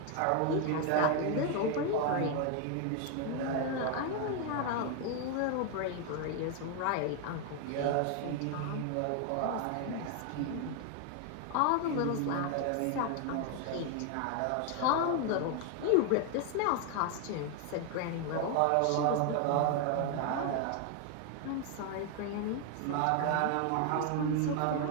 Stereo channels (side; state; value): both; different; correlation 0.01